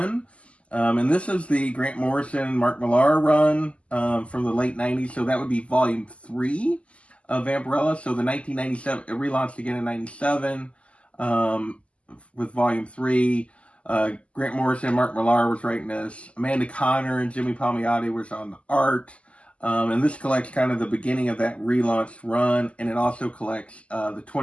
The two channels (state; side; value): late; right; 0.059 ms